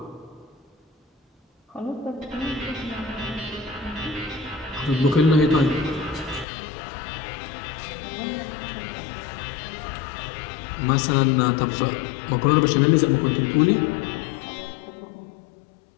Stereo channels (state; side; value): drops out; right; at 6.5 s